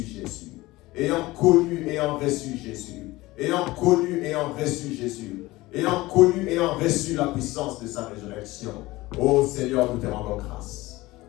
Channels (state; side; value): quieter; right; 19.5 dB